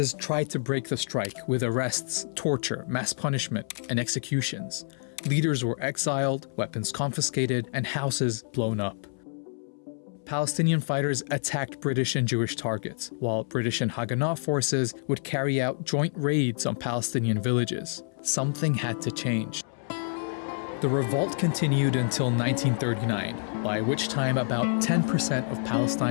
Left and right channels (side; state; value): right; silent; 59 dB below the other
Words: tried to break the strike with arrests, torture, mass punishment, and executions. Leaders were exiled, weapons confiscated, and houses blown up. Palestinian fighters attacked British and Jewish targets, while British and Haganah forces would carry out joint raids on Palestinian villages. Something had to change. The revolt continued until 1939, by which time about 10% of